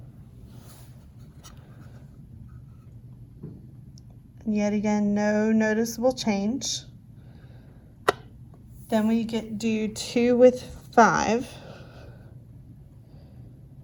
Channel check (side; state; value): both; identical; correlation 1.00